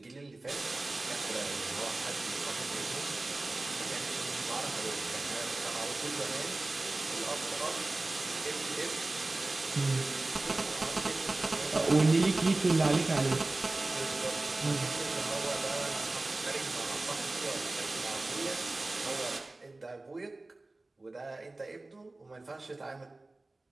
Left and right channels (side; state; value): left; quieter; 3.0 dB